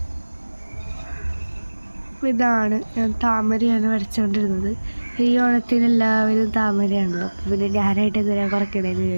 ഇതാണ് ഞാൻ താമരയാണ് വരച്ചുകൊണ്ടിരുന്നത്. ഈ ഓണത്തിന് എല്ലാവരും താമരയാണല്ലോ, അപ്പോൾ പിന്നെ ഞാനായിട്ട് എന്തിനാ കുറയ്ക്കണേന്ന്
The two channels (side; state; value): both; inverted; correlation -1.00